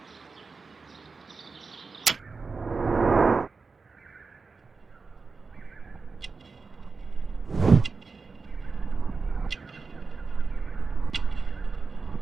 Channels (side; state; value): left; quieter; 4.4 dB